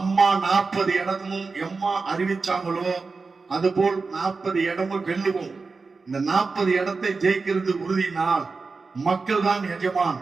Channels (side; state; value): left; quieter; 4.3 dB